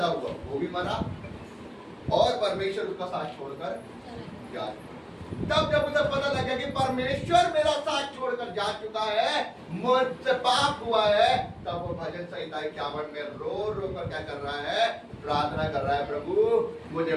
हुआ वो भी मरा और परमेश्वर उसका साथ छोड़कर जा। तब जब उसे पता लगा कि परमेश्वर मेरा साथ छोड़कर जा चुका है, मुझसे पाप हुआ है, तब वो भजन संहिता 51 में रो रो कर क्या कर रहा है, प्रार्थना कर रहा है, प्रभु मुझे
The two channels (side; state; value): both; identical; correlation 1.00